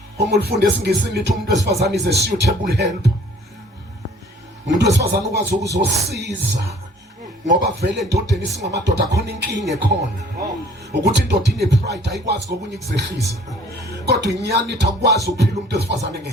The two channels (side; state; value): both; normal; correlation 0.55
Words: Uma ulifunde esiNgisini lithi umuntu wesifazane is a suitable helper. Umuntu wesifazane ukwazi ukuzosiza ngoba vele endodeni singamadoda khona inkinga ekhona. Ukuthi indoda ine pride ayikwazi ngokunye kuzehlisa. Kodwa inyani ithi akwazi ukuphila umuntu wesifazane